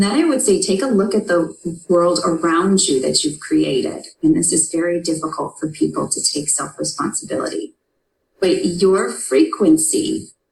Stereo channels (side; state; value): both; identical; correlation 1.00